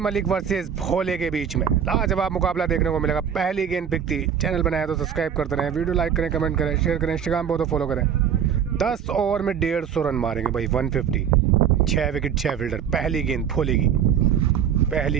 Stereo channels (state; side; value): quieter; left; 8.3 dB